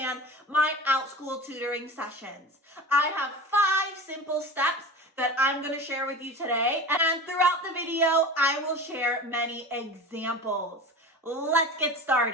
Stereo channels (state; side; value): normal; both; correlation 0.33